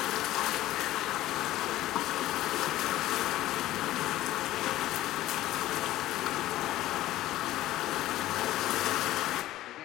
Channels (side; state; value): right; quieter; 15.2 dB